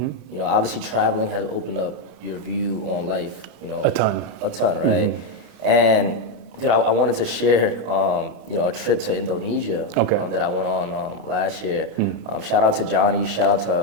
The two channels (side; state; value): left; late; 31 ms